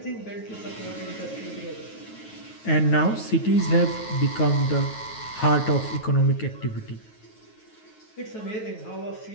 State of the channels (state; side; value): late; right; 9.3 ms